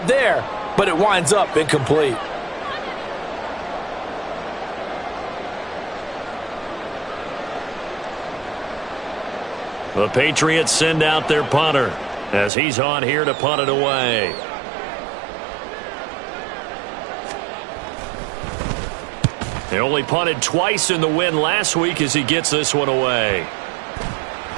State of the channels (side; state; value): left; drops out; at 12.5 s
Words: there, but it winds up incomplete. The Patriots send out their punter as he's on here to punt it away. They only punted twice in the win last week as he gets this one away.